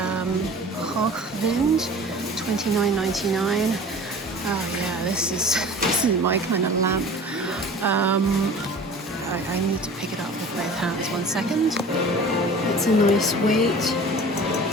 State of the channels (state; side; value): normal; both; correlation 0.42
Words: Hochwind, $29.99. Oh yeah, this is my kind of lamp. I need to pick it up with both hands. 1 second. It's a nice weight.